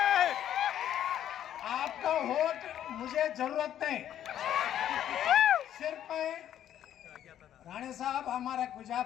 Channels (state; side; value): quieter; right; 10.9 dB